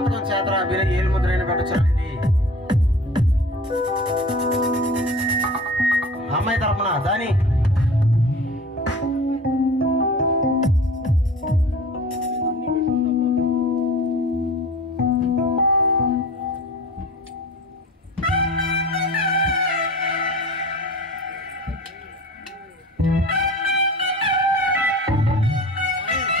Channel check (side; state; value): both; normal; correlation 0.39